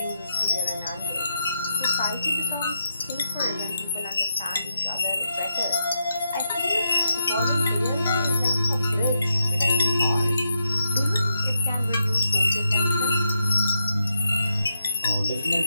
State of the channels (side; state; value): both; inverted; correlation -0.83